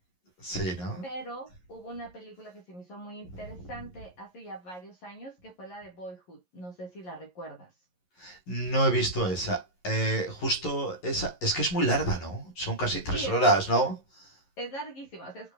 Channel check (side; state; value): right; late; 11 ms